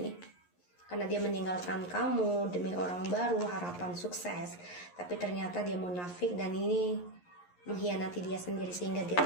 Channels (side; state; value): right; late; 11 ms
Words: karena dia meninggalkan kamu demi orang baru, harapan sukses, tapi ternyata dia munafik dan ini mengkhianati dia sendiri, sehingga dia